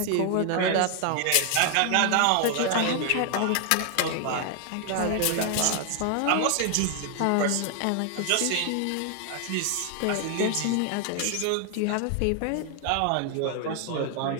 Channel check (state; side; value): different; both; correlation 0.00